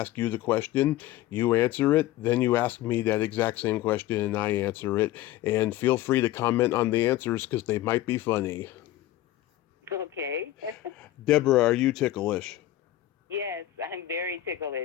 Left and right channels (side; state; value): right; quieter; 14.6 dB